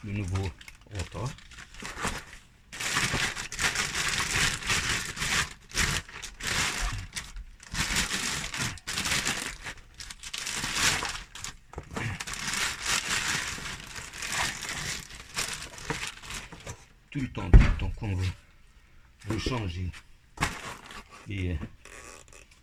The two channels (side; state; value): both; identical; correlation 1.00